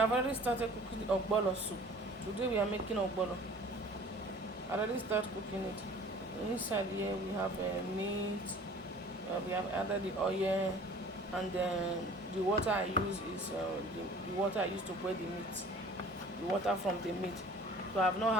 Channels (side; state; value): both; normal; correlation 0.48